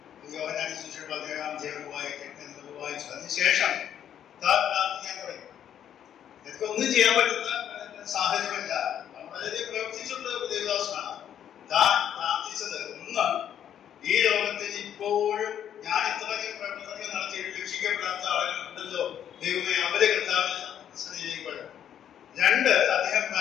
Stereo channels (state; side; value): quieter; right; 9.8 dB